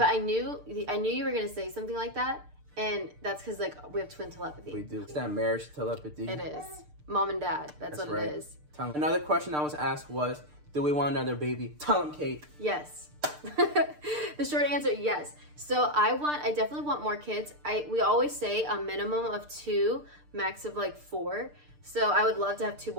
I knew you were gonna say something like that, and that's because we have twin telepathy. We do. It's that marriage telepathy. It is. Mom and dad. That's what right. It is. Another question I was asked was, do we want another baby? Tell them, Kate. Yes. The short answer, yes. So I definitely want more kids. We always say a minimum of 2, max of 4. So I would love to have 2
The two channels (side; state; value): left; late; 6.7 ms